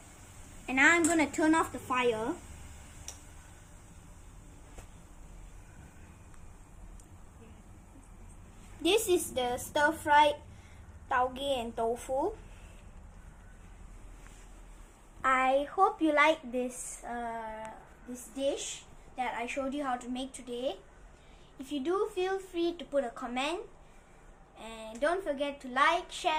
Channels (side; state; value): both; identical; correlation 1.00